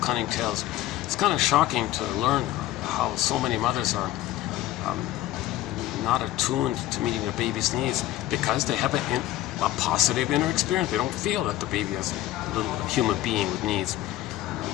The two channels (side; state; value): right; quieter; 14.7 dB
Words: tales. It's kind of shocking to learn how so many mothers are not attuned to meeting their baby's needs because they have a positive inner experience. They don't feel that the baby is a little human being with needs.